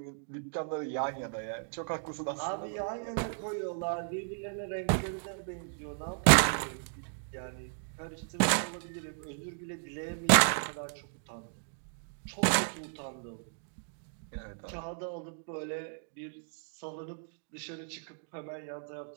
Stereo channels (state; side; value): silent; left; digital silence